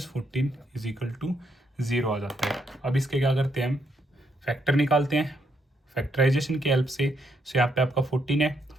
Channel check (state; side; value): normal; both; correlation 0.75